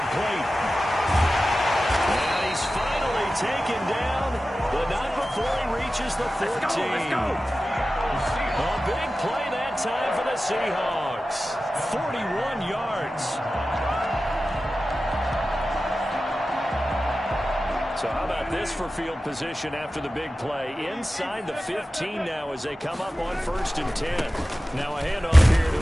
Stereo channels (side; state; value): both; normal; correlation 0.94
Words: And he's finally taken down, but not before he reaches the 14. Let's go. A big play that time for the Seahawks. 41 yards. So how about this for field position after the big play? Inside the 15 now as they come up on 1st and 10. Now a handoff here to